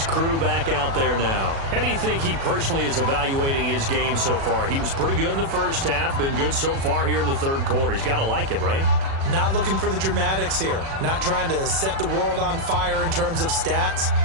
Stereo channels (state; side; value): late; left; 36 ms